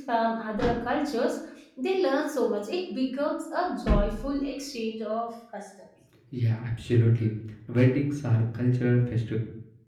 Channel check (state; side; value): identical; both; correlation 1.00